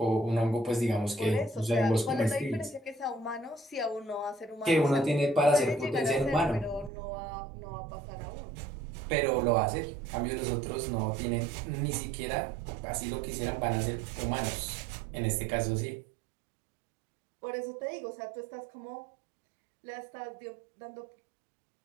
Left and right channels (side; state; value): left; drops out; at 6.9 s